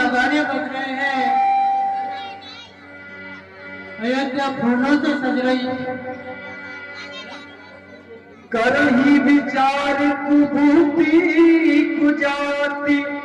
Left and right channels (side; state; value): both; identical; correlation 1.00